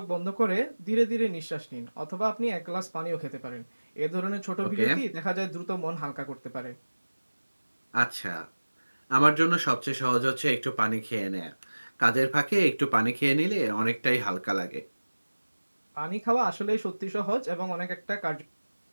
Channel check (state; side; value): inverted; both; correlation -1.00